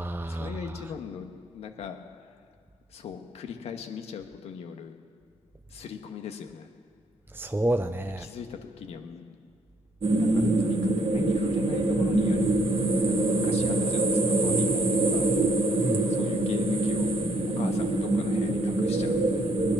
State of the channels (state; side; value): normal; both; correlation 0.69